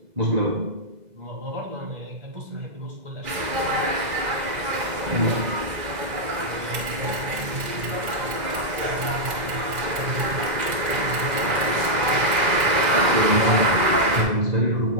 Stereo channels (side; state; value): left; late; 2.0 ms